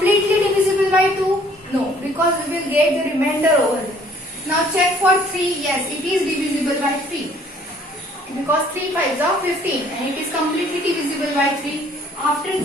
divisible by 2? No, because we will get the remainder over there. Now check for 3. Yes, it is divisible by 3. Because 3 5s are 15 and it is completely divisible by 3. After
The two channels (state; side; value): normal; both; correlation 0.58